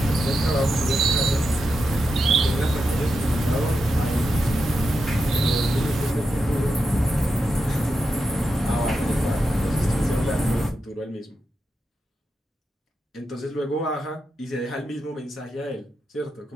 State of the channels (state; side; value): normal; both; correlation 0.87